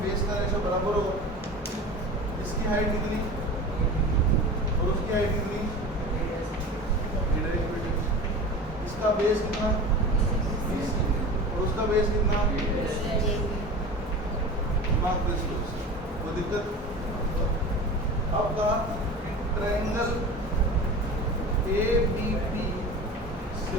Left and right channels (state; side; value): normal; both; correlation 0.34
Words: बेस का रेशो बराबर होगा। इसकी हाइट कितनी और उसकी हाइट कितनी, इसका बेस कितना और उसका बेस कितना, वो दिक्कत। अब कहा triangle A B P